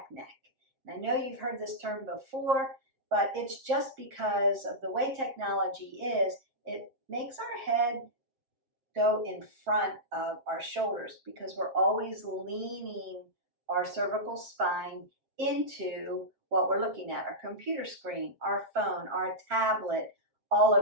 neck. And I know you've heard this term before, but it's just because of the way technology is, it makes our head go in front of our shoulders because we're always leaning our cervical spine into what we're looking at, our computer screen, our phone, our tablet, all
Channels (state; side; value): late; left; 7.5 ms